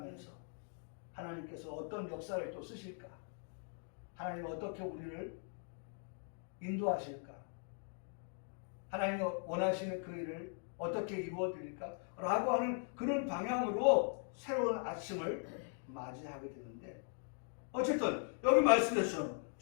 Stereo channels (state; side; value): silent; right; 51 dB below the other